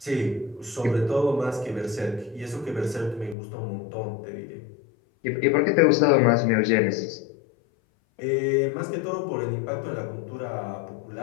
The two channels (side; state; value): right; drops out; at 3.4 s